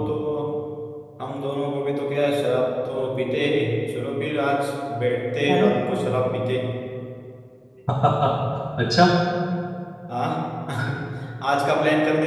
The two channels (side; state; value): both; identical; correlation 1.00